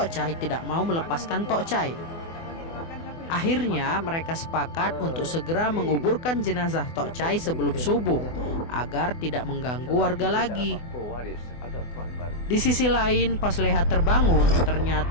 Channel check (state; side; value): late; right; 24 ms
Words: Chai tidak mau melepaskan Tok Chai. Akhirnya mereka sepakat untuk segera menguburkan jenazah Tok Chai sebelum subuh agar tidak mengganggu warga lagi. Di sisi lain, pas Leha terbangun,